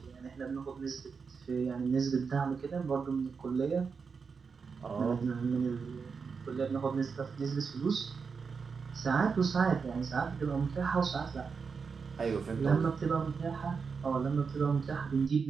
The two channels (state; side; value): quieter; left; 5.4 dB